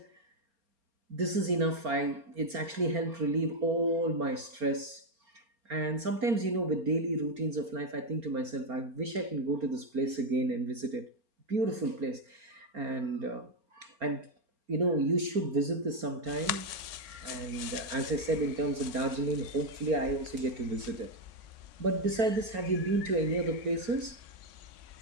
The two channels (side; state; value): left; late; 4.4 ms